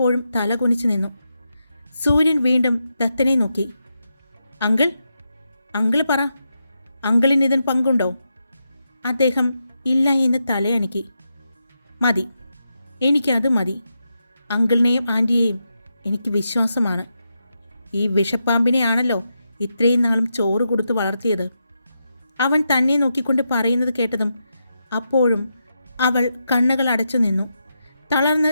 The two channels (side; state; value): both; inverted; correlation -0.85